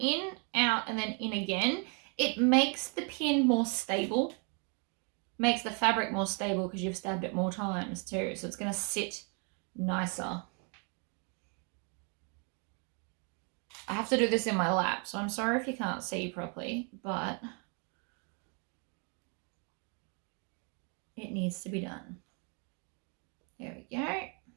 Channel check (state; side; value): quieter; left; 37.4 dB